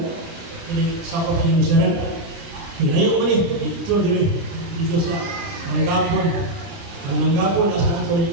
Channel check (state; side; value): late; left; 30 ms